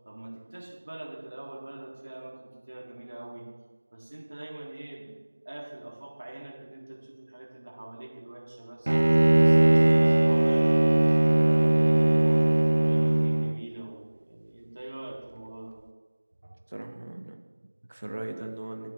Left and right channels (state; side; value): inverted; both; correlation -1.00